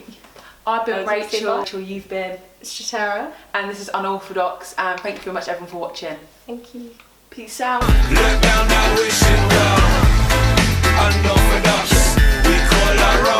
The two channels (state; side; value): identical; both; correlation 1.00